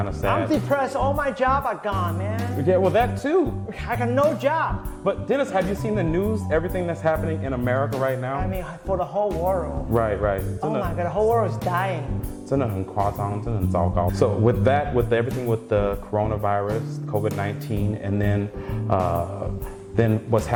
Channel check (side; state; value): both; identical; correlation 1.00